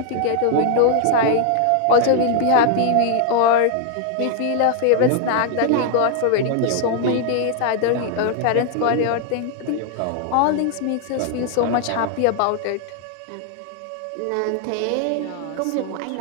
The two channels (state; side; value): different; both; correlation 0.00